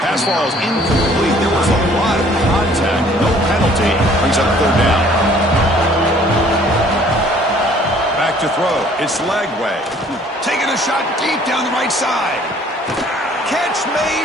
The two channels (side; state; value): both; normal; correlation 0.56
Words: Pass ball is incomplete. There was a lot of contact. No penalty. Brings up third down. Back to throw. It's Lagway. Taking a shot deep down the right side. Catch